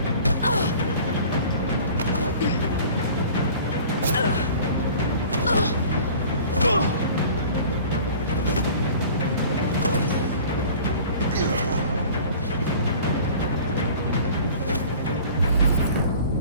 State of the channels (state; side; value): inverted; both; correlation -0.45